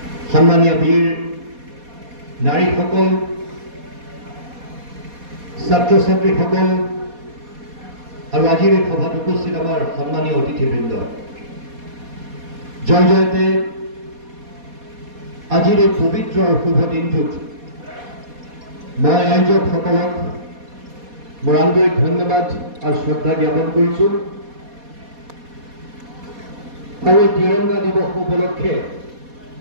সন্মানীয় বীৰ নাৰীসকল, ছাত্ৰ ছাত্ৰীসকল আৰু আজিৰ এই সভাত উপস্থিত আমাৰ সন্মানীয় অতিথিবৃন্দ, জয় জয়তে আজিৰ এই পবিত্ৰ আৰু শুভ দিনটোত মই আয়োজকসকলক মোৰ আন্তৰিক ধন্যবাদ আৰু শ্ৰদ্ধা জ্ঞাপন কৰিছোঁ। আৰু এই তিৰংগা দিৱস উপলক্ষে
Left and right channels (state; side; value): late; left; 4.2 ms